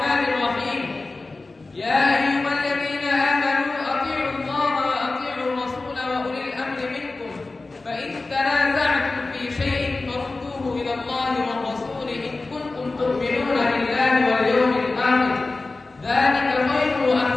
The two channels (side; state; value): right; quieter; 3.4 dB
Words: الرحيم. يا أيها الذين آمنوا أطيعوا الله وأطيعوا الرسول وأولي الأمر منكم، فإن تنازعتم في شيء فردوه إلى الله والرسول إن كنتم تؤمنون بالله واليوم الآخر، ذلك خير